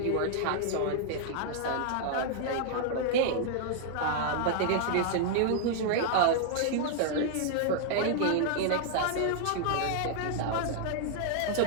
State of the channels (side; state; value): both; different; correlation -0.01